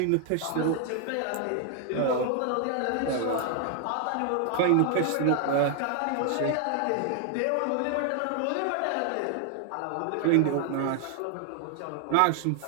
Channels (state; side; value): different; both; correlation 0.00